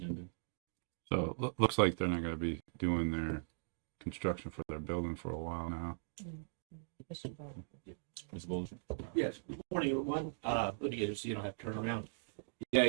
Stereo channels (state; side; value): silent; left; digital silence